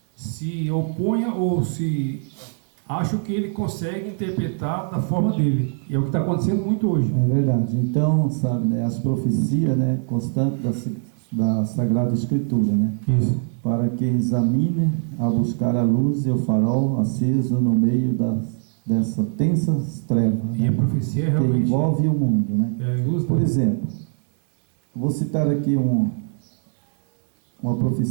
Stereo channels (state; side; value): silent; left; 64 dB below the other